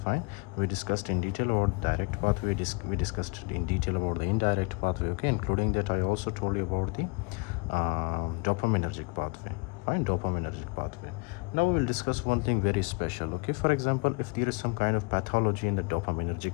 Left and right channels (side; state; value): right; quieter; 31.1 dB